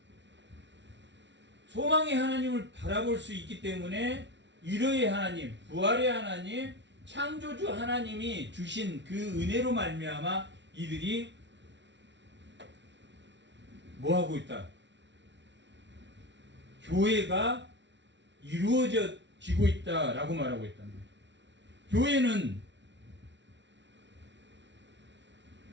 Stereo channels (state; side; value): late; left; 0.52 ms